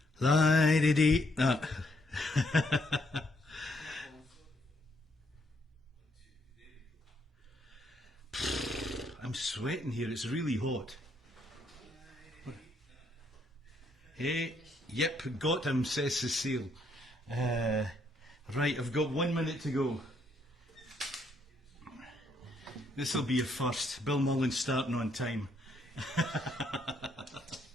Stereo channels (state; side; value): normal; both; correlation 0.72